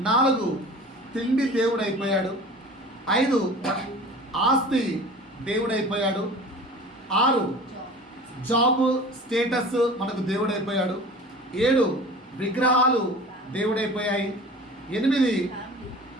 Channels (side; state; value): both; normal; correlation 0.40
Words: 4 తిండి దేవుడైపోయాడు, 5 ఆస్తి దేవుడైపోయాడు, 6 జాబ్ స్టేటస్ మనకు దేవుడైపోయాడు, 7 విగ్రహాలు దేవుడైపోయాయి, 8